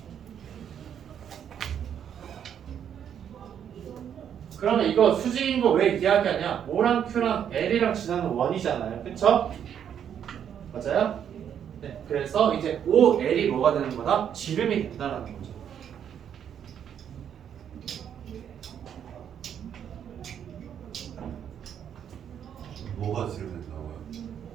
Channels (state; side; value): quieter; left; 8.9 dB